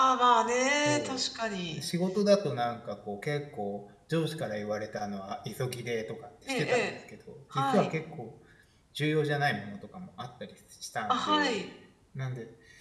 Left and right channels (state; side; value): identical; both; correlation 1.00